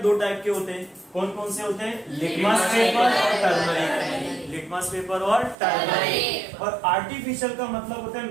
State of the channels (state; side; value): drops out; left; at 5.6 s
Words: टाइप के होते हैं। कौन कौन से होते हैं? लिटमस पेपर और टर्मरिक। लिटमस पेपर और टर्मरिक। और आर्टिफिशियल का मतलब होता है